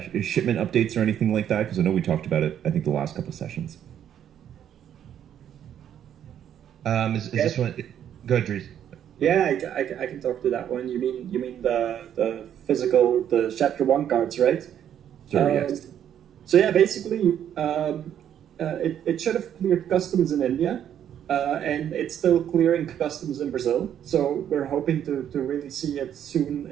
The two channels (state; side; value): quieter; left; 9.8 dB